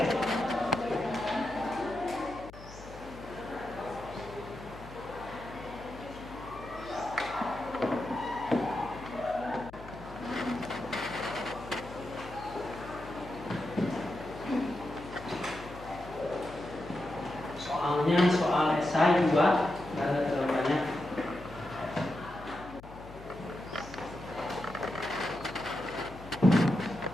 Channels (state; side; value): noise; left; hum, 16 dB below the sound